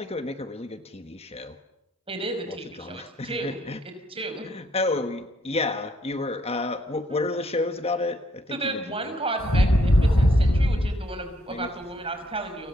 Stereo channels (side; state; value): both; normal; correlation 0.69